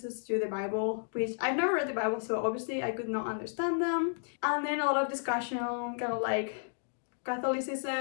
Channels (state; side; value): silent; right; digital silence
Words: to the Bible, which I've never read the Bible, so obviously I could not understand them. And then a lot of discussion, kind of like